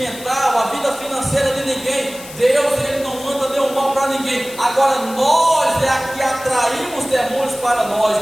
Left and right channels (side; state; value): left; noise; hiss, 16 dB below the sound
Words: a vida financeira de ninguém. Deus, ele não manda nenhum mal para ninguém. Agora nós é que atraímos demônios para nós.